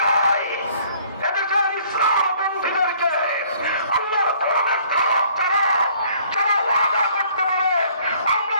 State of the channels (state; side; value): inverted; both; correlation -0.58